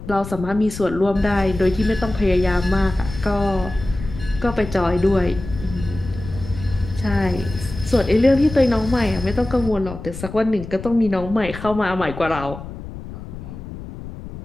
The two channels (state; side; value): noise; left; rumble, 11 dB below the sound